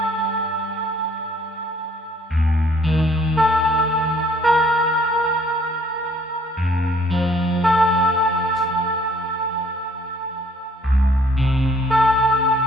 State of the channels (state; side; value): normal; both; correlation 0.61